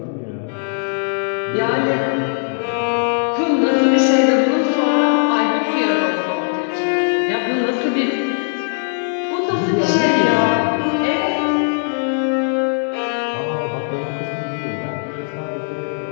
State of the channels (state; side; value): silent; right; digital silence